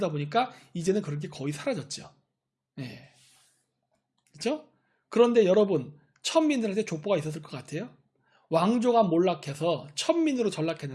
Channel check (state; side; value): identical; both; correlation 1.00